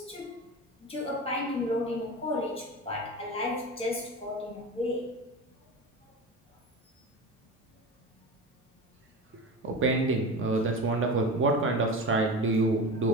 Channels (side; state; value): both; normal; correlation 0.28